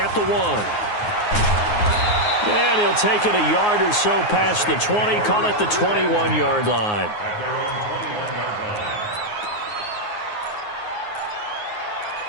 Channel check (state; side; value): late; right; 9.6 ms